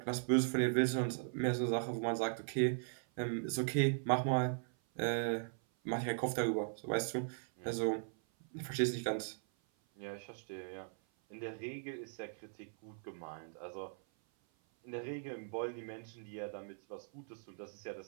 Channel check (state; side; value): silent; left; 52 dB below the other